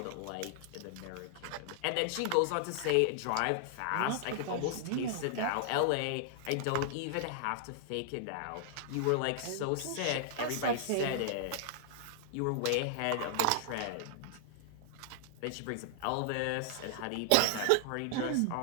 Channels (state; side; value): different; both; correlation -0.01